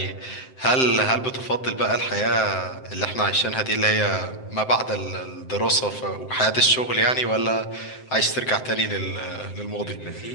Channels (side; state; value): right; late; 7.7 ms